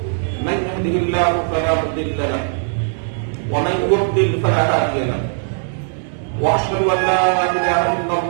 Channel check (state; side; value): silent; left; digital silence